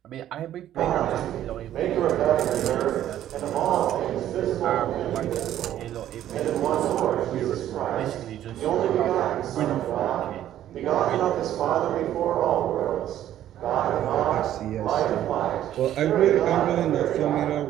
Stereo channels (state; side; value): quieter; left; 12.0 dB